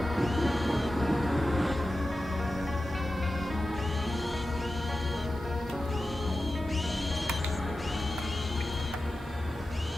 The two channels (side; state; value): both; normal; correlation 0.93